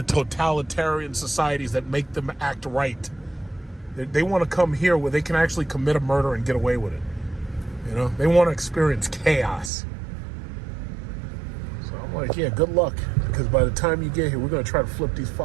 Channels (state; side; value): drops out; left; at 9.7 s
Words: totalitarian societies that make them act right. They want to come here where they can actually commit a murder and get away with it. You know, they want to experience chaos. So I'm like, yeah, good luck, because by the time you get here, we're going to try to flip these